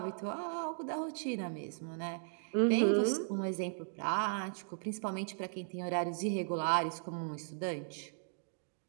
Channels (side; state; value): left; silent; digital silence